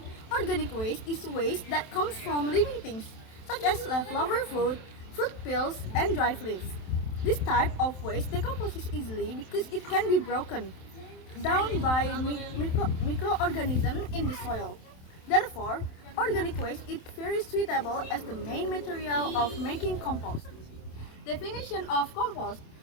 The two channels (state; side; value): late; right; 27 ms